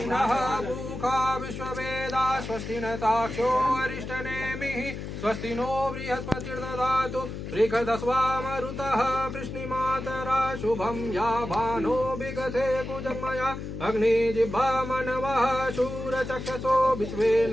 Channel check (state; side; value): noise; left; hum, 7 dB below the sound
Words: नः पूषा विश्ववेदा स्वस्ति न ताक्षो अरिष्टनेमिः स्वस्ति नो बृहस्पतिर्दधातु बृहदस्वा मरुतः वृष्णिमातरा शुभं या भानो विगते कुजन्मया अग्निजिह्वा मनवः शूरचक्षसो विश्वे